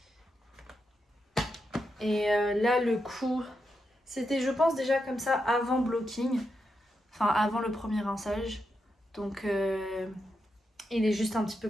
Et là, le coup, c'était, je pense, déjà comme ça avant blocking. Enfin, avant le premier rinçage. Donc, il est juste un petit peu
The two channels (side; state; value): both; normal; correlation 0.85